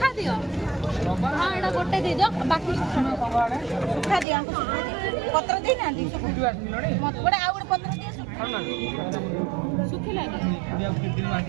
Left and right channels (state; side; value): drops out; left; at 4.2 s